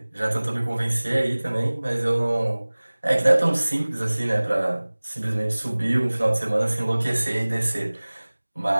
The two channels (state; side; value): inverted; both; correlation -1.00